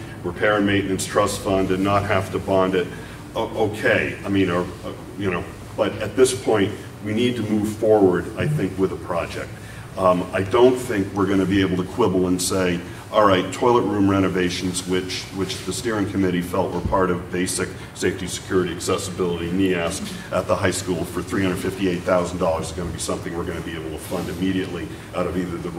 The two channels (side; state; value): both; identical; correlation 1.00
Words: repair and maintenance trust fund and not have to bond it. Okay, I mean, but at this point, we need to move forward, I think, with a project. I don't think we're going to be able to quibble and say, all right, toilet room renovations, which the steering committee felt were part of basic safety, security, accessibility, NEASC at the high school for $358,000 is going to be something we're going to be able to fund immediately out of either the